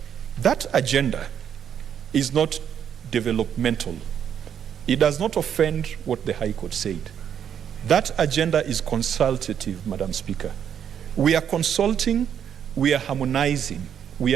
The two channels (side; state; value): left; quieter; 8.7 dB